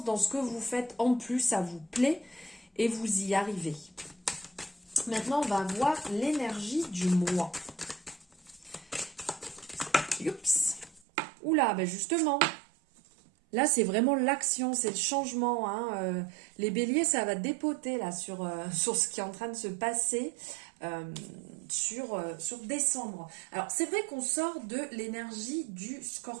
dans ce que vous faites. En plus, ça vous plaît et vous y arrivez. Maintenant, on va voir l'énergie du mois. Oups. Oula, ben justement, là, c'est vraiment l'action, c'est le changement. Les béliers, ça va dépoter là sur ce qui est en train de se passer sur décembre. Alors, c'est vrai qu'on sort de l'énergie du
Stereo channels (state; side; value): drops out; left; at 11.0 s